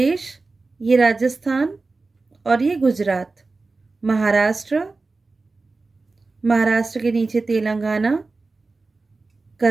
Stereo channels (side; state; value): left; quieter; 3.7 dB